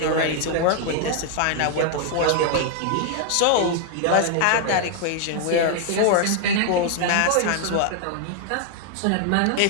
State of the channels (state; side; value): different; both; correlation 0.00